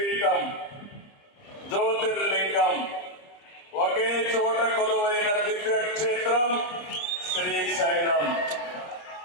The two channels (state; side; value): late; right; 28 ms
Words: జ్యోతిర్లింగం, ఒకే చోట కొలువైన దివ్యక్షేత్రం శ్రీశైలం.